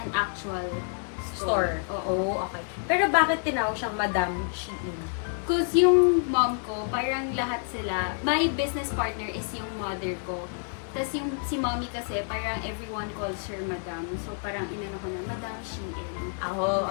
an actual store. Oo, okay. Pero bakit tinawag siyang Madam Shein? Because yung mom ko, parang lahat sila, my business partner is yung mother ko. Tapos yung si mommy kasi, parang everyone calls her Madam. So parang inano ko na, Madam Shein.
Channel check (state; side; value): silent; right; 59 dB below the other